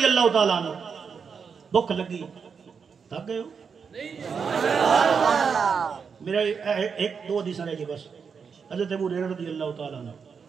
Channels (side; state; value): left; quieter; 6.1 dB